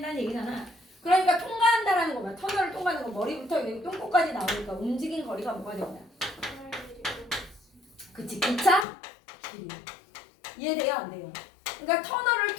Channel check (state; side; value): drops out; right; at 8.8 s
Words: 얘기잖아. 그러니까 통과한다라는 거야. 터널을 통과하는 거. 머리부터 여기 똥꼬까지 나오니까 움직인 거리가 뭐가 된다. 그치, 기차 길이. 이해돼요? 안 돼요? 그러니까 터널을